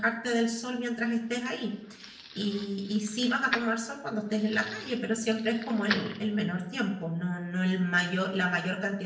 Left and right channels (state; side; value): identical; both; correlation 1.00